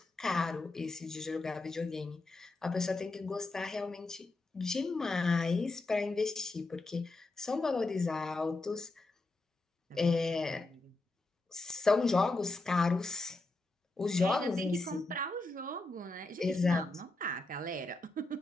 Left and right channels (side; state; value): right; quieter; 3.1 dB